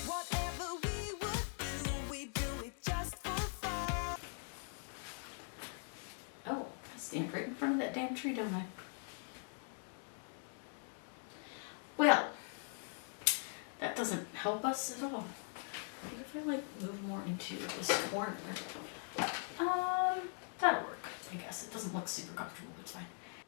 Whatever we would do, we do it just for fun. Oh, I stand right in front of that damn tree, don't I? Well, that doesn't help us at all. What if I move more into this corner? That'll work, I guess. It doesn't look super comfortable, but it's fine.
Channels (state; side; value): silent; right; 50 dB below the other